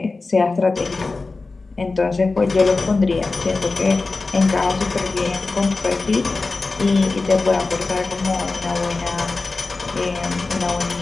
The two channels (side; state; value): right; quieter; 3.7 dB